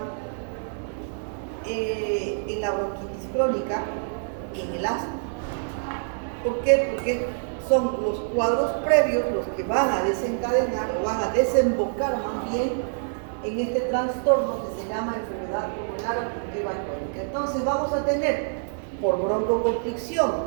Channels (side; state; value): left; silent; digital silence